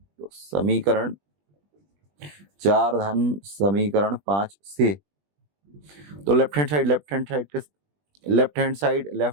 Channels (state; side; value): late; left; 20 ms